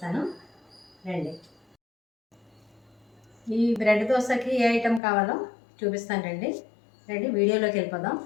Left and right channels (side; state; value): right; drops out; at 5.0 s